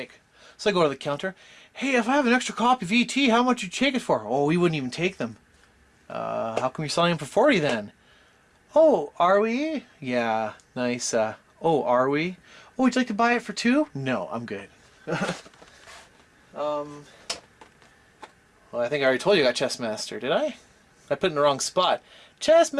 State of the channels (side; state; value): both; identical; correlation 1.00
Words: so I go to the counter. Hey, if I have an extra copy of ET, how much would you take it for? Oh, we wouldn't even take them. How come you're selling them for 40 then? Oh, are we? Yeah, nice. Oh, are we? Oh, would you like to buy it for 2? No, I'm good. Well, I think I already told you I got Chess Master, did I? I put it in the wrong spot. Chess